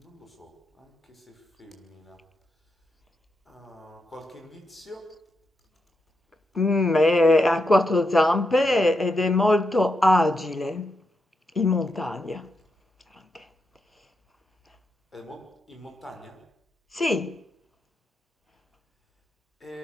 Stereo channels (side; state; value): both; normal; correlation 0.84